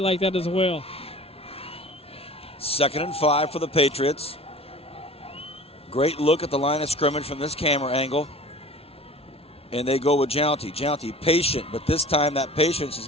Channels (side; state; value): both; normal; correlation 0.43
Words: that as well. 2nd and 5 for the Patriots. Great look at the line of scrimmage from this camera angle. And they go with Jounty. Jounty patient, but this time that patience is